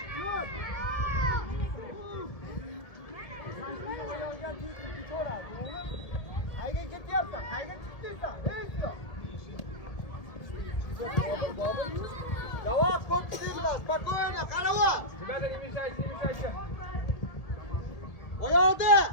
Yo'q. Qayga ketyapsan? Qayga chiqdingsan? Ey Islom. Bobur. Javob ko'pchiliklar, spokойно, qarava. Rебята, не мешайте. Oyoqda.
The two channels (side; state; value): right; late; 1.7 ms